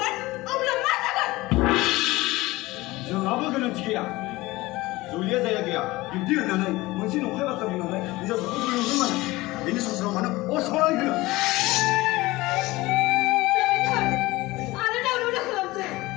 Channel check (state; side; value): quieter; right; 20.0 dB